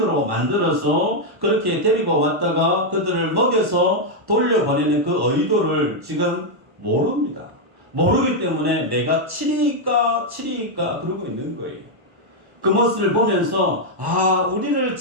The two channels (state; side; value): late; left; 1.1 ms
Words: 만들어서 그렇게 데리고 왔다가 그들을 먹여서 돌려보내는 그 의도를 지금 모릅니다. 모르기 때문에 내가 치리까 그러고 있는 거예요. 그 모습을 보면서 우리를